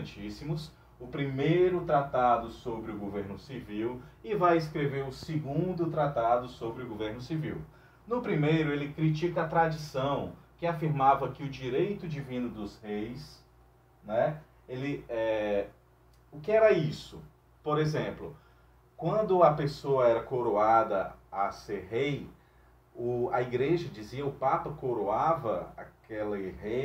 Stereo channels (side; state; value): both; identical; correlation 1.00